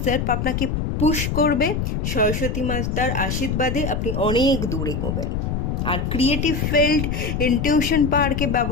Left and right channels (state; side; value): noise; left; rumble, 1 dB below the sound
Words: সেলফ আপনাকে পুশ করবে। সরস্বতী মাতার আশীর্বাদে আপনি অনেক দূর এগোবেন। আর ক্রিয়েটিভ ফিল্ড, ইনটিউশন পাওয়ারকে